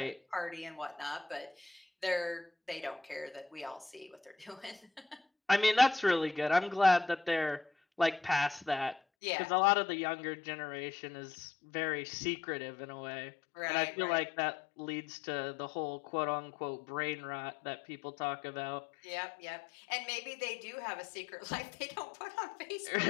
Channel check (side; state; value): right; drops out; at 9.0 s